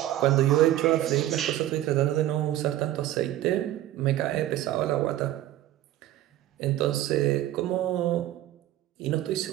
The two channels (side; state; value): left; quieter; 13.8 dB